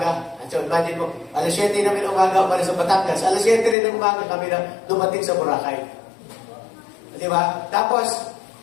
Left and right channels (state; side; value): drops out; right; at 3.8 s